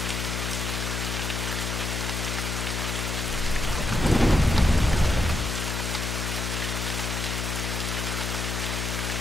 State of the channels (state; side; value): noise; left; hum, 2 dB below the sound